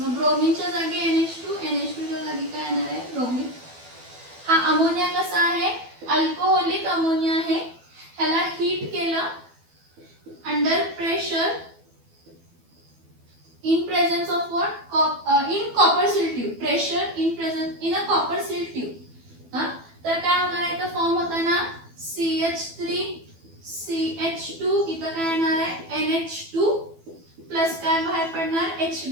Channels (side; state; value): left; late; 12 ms